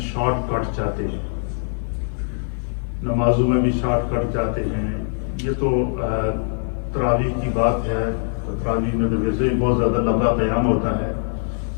شارٹ کٹ چاہتے ہیں، نمازوں میں بھی شارٹ کٹ چاہتے ہیں۔ یہ تو تراویح کی بات ہے، تراویح میں تو ویسے ہی بہت زیادہ لمبا قیام ہوتا ہے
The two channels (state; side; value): silent; right; 56 dB below the other